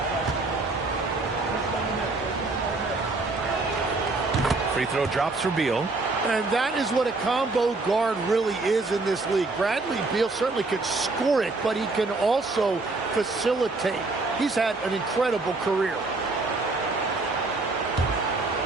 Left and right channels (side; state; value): left; quieter; 3.4 dB